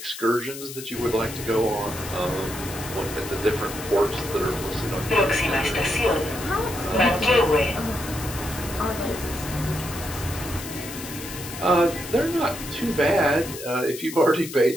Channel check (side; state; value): left; noise; hiss, 11 dB below the sound